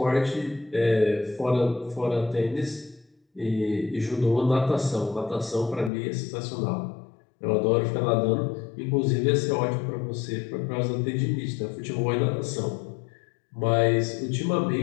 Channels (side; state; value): right; drops out; at 5.9 s